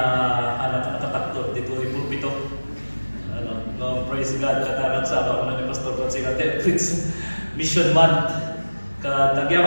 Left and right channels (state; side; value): inverted; both; correlation -1.00